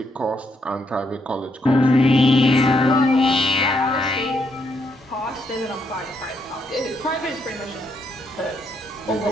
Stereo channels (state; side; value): normal; both; correlation 0.77